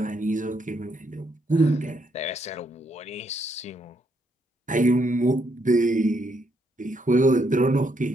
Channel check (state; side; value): normal; both; correlation 0.75